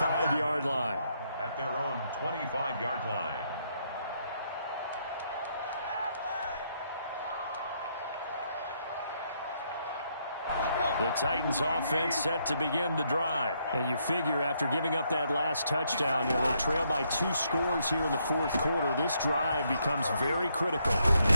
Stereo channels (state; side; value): inverted; both; correlation -0.74